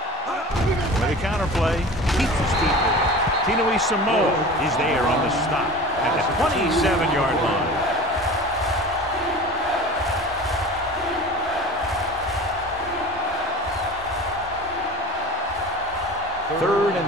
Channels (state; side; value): normal; both; correlation 0.37